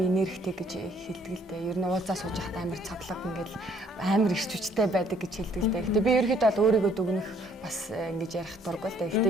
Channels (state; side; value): normal; both; correlation 0.63